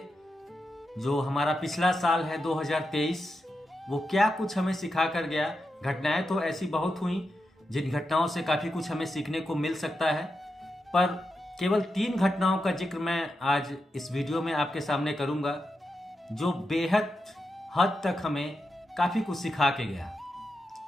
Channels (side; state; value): both; normal; correlation 0.88